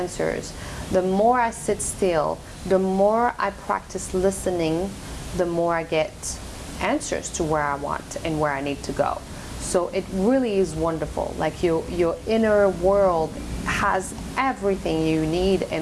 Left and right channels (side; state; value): both; identical; correlation 1.00